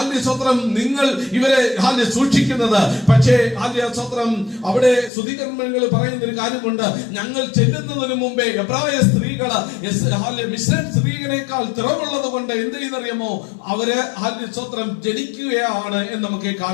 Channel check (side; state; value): right; drops out; at 5.1 s